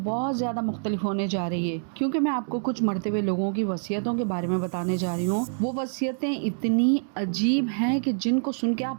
بہت زیادہ مختلف ہونے جا رہی ہے، کیونکہ میں آپ کو کچھ مرتے ہوئے لوگوں کی وصیتوں کے بارے میں بتانے جا رہی ہوں۔ وہ وصیتیں اتنی عجیب ہیں کہ جن کو سن کے آپ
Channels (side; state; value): left; silent; digital silence